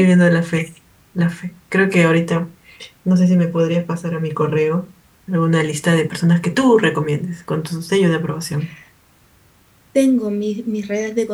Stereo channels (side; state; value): both; identical; correlation 1.00